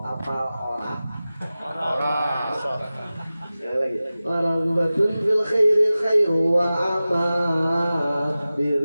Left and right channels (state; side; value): inverted; both; correlation -0.96